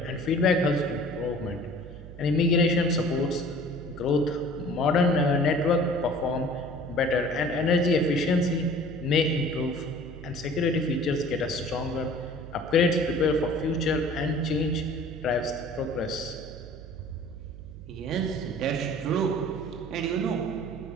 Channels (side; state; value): right; noise; hum, 15 dB below the sound